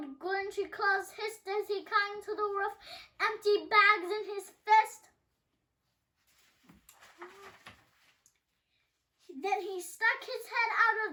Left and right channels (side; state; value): both; identical; correlation 1.00